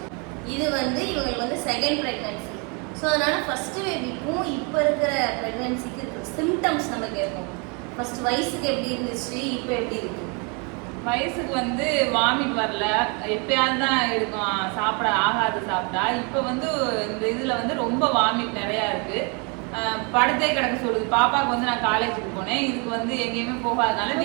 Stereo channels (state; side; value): quieter; left; 33.2 dB